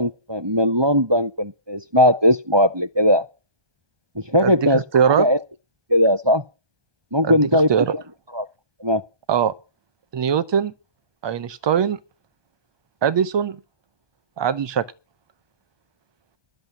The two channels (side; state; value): left; late; 1.2 ms